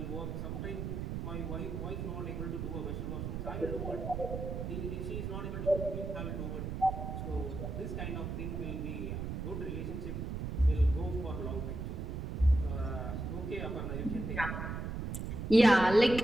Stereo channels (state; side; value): noise; right; rumble, 4 dB below the sound